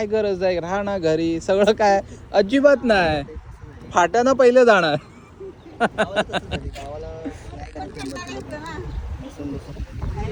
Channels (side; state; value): both; identical; correlation 1.00